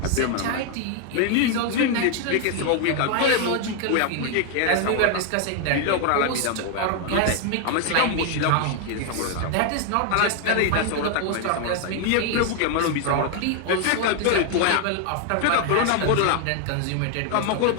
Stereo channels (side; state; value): both; different; correlation 0.00